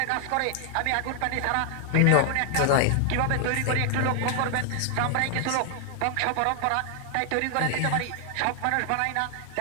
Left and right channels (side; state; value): both; different; correlation 0.00